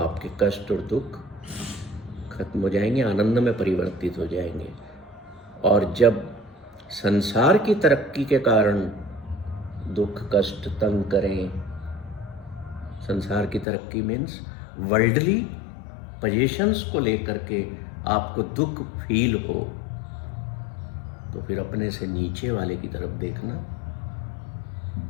कष्ट और दुख खत्म हो जाएंगे, आनंद में परिवर्तित हो जाएंगे। और जब संसार की तरक्की के कारण दुख कष्ट तंग करें, संसार की तरक्की मीन्स वर्ल्डली पोजीशंस को लेकर के आपको दुख फील हो, तो फिर अपने से नीचे वाले की तरफ देखना,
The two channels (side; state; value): right; drops out; at 13.7 s